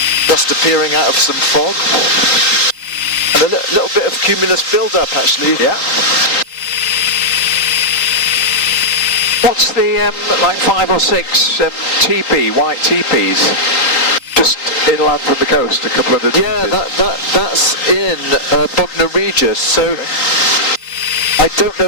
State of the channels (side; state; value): right; late; 3.9 ms